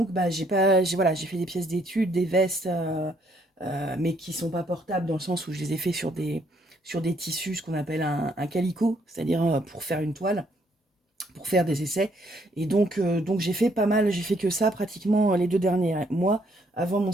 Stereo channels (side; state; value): both; normal; correlation 0.69